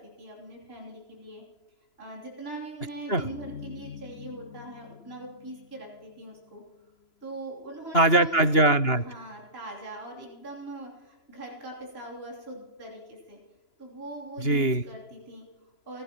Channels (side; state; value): right; late; 2.8 ms